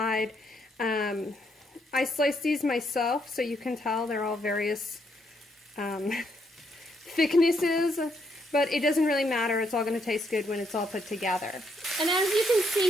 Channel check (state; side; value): normal; both; correlation 0.74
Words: I sliced these myself, so you can tell they're all various thicknesses, but it doesn't really matter. It's all going to taste good when it's all put together. And as you can see